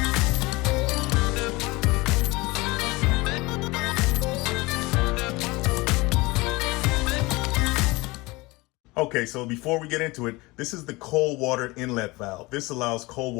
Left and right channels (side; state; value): right; quieter; 22.9 dB